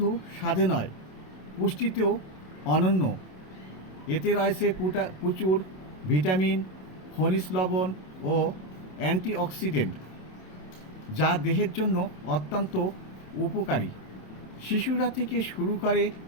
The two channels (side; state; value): right; late; 27 ms